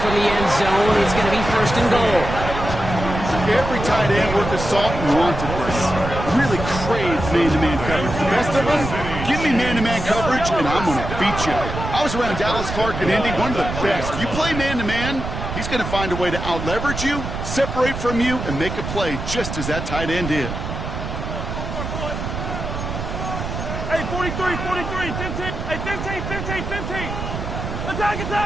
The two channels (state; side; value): noise; right; rumble, 6 dB below the sound